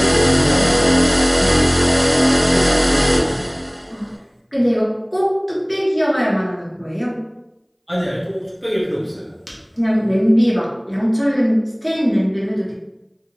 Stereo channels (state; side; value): identical; both; correlation 1.00